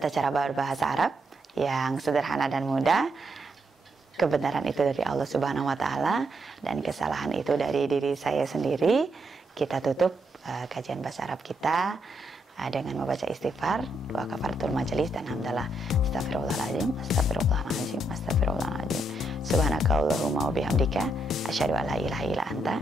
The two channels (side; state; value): both; normal; correlation 0.78